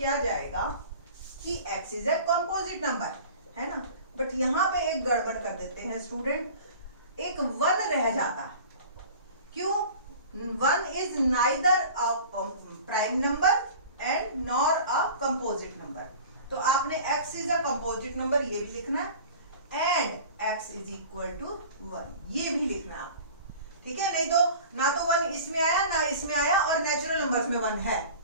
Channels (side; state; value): both; inverted; correlation -0.41